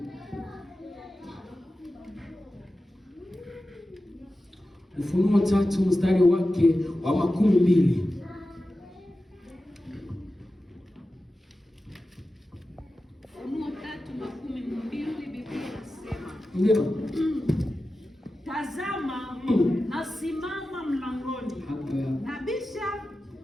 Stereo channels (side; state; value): both; normal; correlation 0.93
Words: Ufunuo 3 mstari wake wa 12. Ndio. Tazama, nasimama mlangoni nabisha,